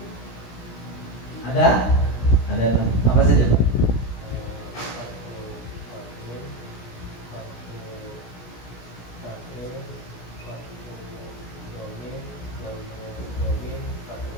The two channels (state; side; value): late; right; 17 ms